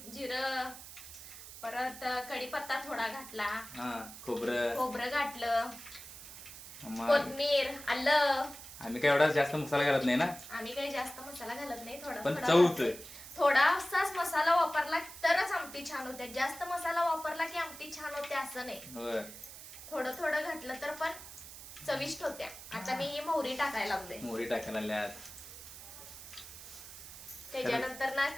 जिरं, परत कढीपत्ता थोडा घातला. हा, खोबरं घातलं, कोथिंबीर, आलं. आम्ही काय एवढा जास्त मसाला घालत नाही ना. आम्ही काही जास्त मसाला घालत नाही, पण चव होतोय. थोडासाच मसाला वापरला तरच आमटी छान होते. जास्त मसाला वापरला की आमटी छान होते असं नाही. थोडं थोडं घातलं तर पण चविष्ट होत्या. आता मी ही मोहरी टाकायला लागले. मोहरी टाकायला लागल्यात. त्याच्यानंतर ना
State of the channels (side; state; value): right; noise; hiss, 14 dB below the sound